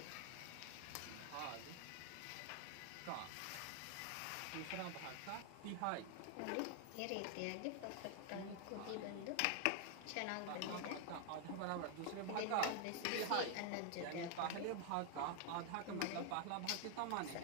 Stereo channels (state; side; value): different; both; correlation 0.00